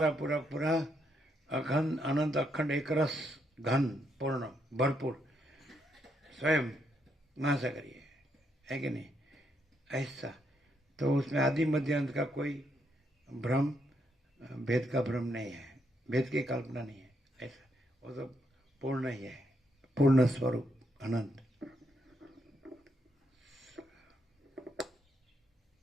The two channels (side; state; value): both; normal; correlation 0.77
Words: पूरा पूरा अखंड अनंत अखंड एक रस घन पूर्ण भरपूर स्वयं महासागर है कि नहीं, ऐसा। तो उसमें आदि मध्य अंत का कोई भ्रम, भेद का भ्रम नहीं है, भेद की कल्पना नहीं है, ऐसा। वो तो पूर्ण ही है, पूर्ण स्वरूप अनंत।